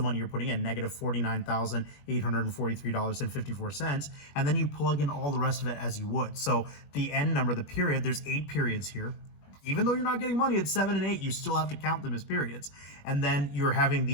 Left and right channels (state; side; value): late; right; 21 ms